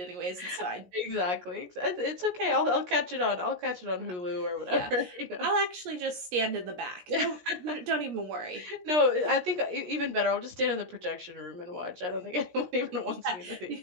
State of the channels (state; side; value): late; left; 17 ms